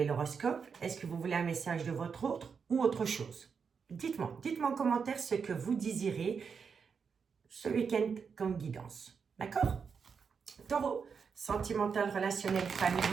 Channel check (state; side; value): quieter; left; 6.0 dB